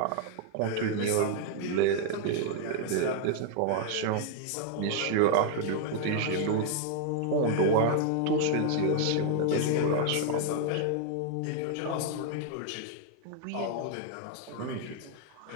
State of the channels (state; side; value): different; both; correlation 0.00